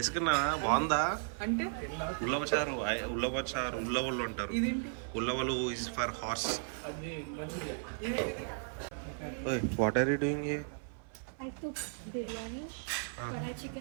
బాగుందా? అంటే ఉల్లవ చారు ఉల్లవలు అంటారు. ఇదేంటి? ఉల్లవలు ఇస్ ఫర్ హార్స్. ఇది what are you doing here? I took biryani, karai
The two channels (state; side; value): silent; left; 54 dB below the other